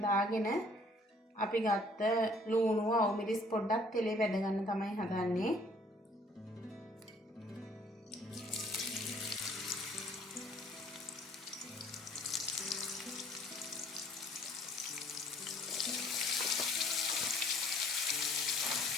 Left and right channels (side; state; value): both; normal; correlation 0.58